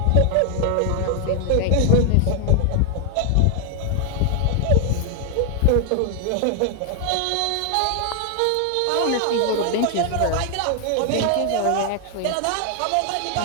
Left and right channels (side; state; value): both; different; correlation 0.00